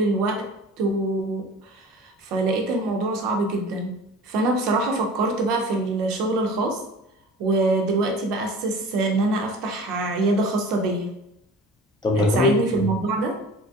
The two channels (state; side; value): normal; both; correlation 0.42